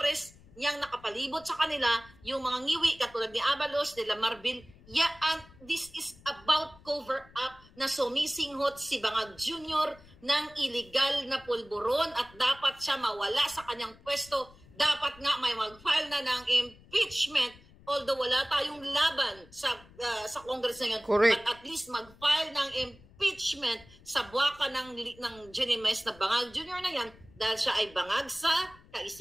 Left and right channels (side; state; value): left; noise; rumble, 24 dB below the sound